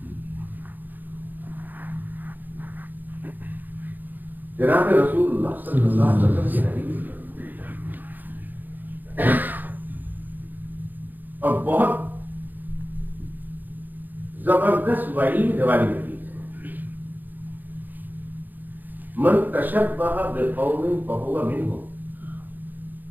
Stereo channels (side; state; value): left; late; 0.088 ms